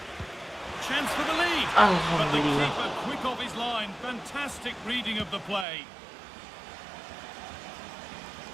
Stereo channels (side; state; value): left; drops out; at 5.7 s